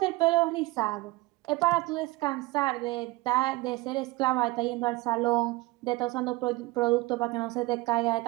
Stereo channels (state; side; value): quieter; left; 20.6 dB